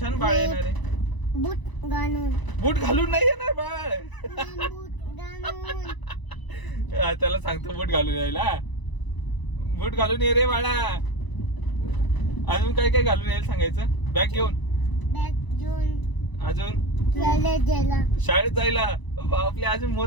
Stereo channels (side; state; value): right; late; 1.0 ms